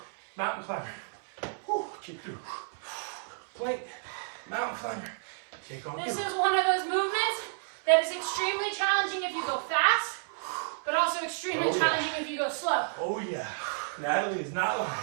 Mountain climber. Whew, kick through. Plank, mountain climber. Kick on This through. is one of those movements that is extremely challenging if you go fast, but also extremely challenging if you go slow. Oh yeah, Natalie is not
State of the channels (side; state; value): left; silent; 57 dB below the other